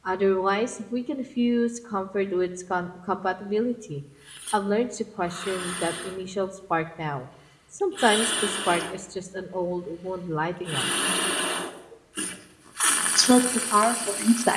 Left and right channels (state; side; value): identical; both; correlation 1.00